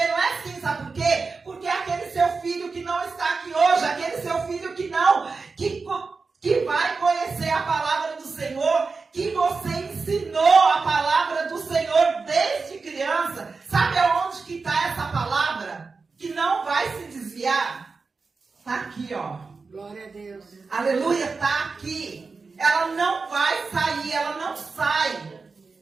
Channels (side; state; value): left; quieter; 4.4 dB